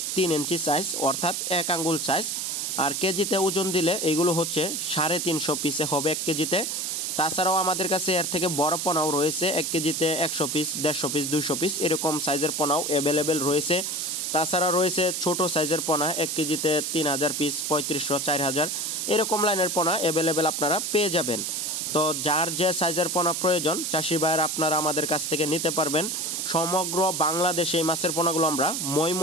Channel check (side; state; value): right; noise; hiss, 2 dB below the sound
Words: 3 ইঞ্চি সাইজ, অর্থাৎ 1 আঙ্গুল সাইজ। আর কেজিতে ওজন দিলে এইগুলো হচ্ছে 350 পিসে হবে 1 কেজিতে। তাছাড়াও আমাদের কাছে এর থেকে বড় পোনাও রয়েছে, 1 কেজিতে 100 পিস, 150 পিস, 200 পিস এরকম সাইজের পোনাও অ্যাভেলেবেল রয়েছে। তাছাড়া রয়েছে ছোট সাইজের পোনা, 1 কেজিতে 3000 পিস, 3500, 4000 এরকম লাইনের পোনা অ্যাভেলেবেল আপনারা পেয়ে যাবেন। তো যার যে সাইজের পোনা প্রয়োজন চাষি ভাইয়েরা আপনারা আমাদের কাছ থেকে নিতে পারবেন। সমগ্র বাংলাদেশে এই মাছের পোনাগুলো আমরা